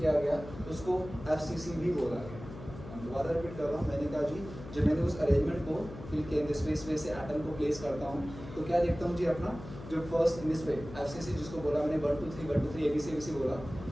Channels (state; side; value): noise; left; hum, 13 dB below the sound